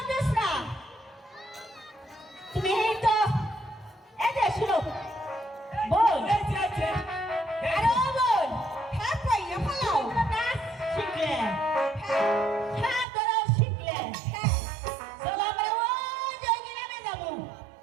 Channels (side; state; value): left; drops out; at 13.1 s